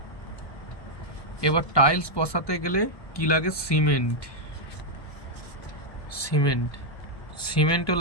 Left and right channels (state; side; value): late; right; 1.2 ms